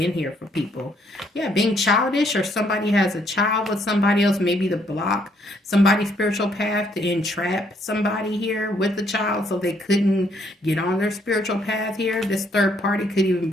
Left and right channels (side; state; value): both; normal; correlation 0.69